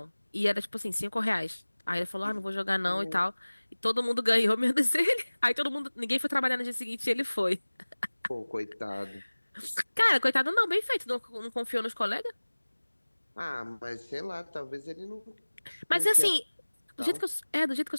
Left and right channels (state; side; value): inverted; both; correlation -1.00